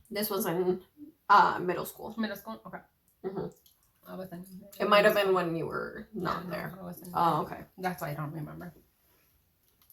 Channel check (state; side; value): identical; both; correlation 1.00